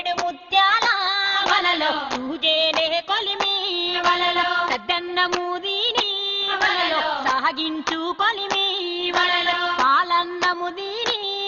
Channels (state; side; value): identical; both; correlation 1.00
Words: ముత్యాల వలలో తూజేనే కొలిమి వలలో సద్దన్న మూదిని వలలో సాగించు కొలిమి వలలో పాలన్న ముదిని